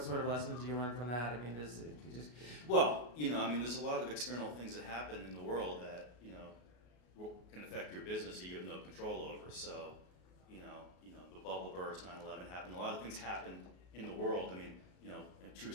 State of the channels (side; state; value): right; late; 33 ms